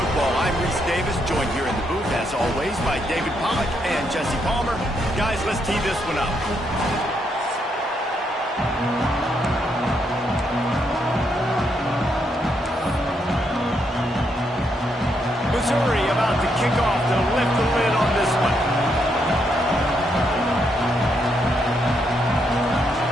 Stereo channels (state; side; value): normal; both; correlation 0.77